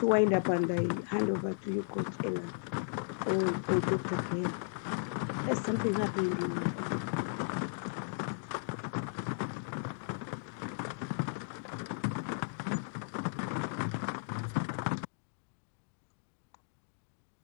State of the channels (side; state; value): right; silent; digital silence